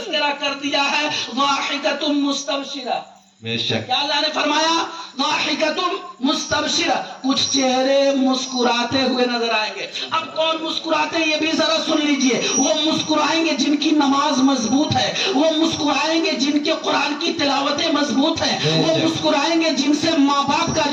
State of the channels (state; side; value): identical; both; correlation 1.00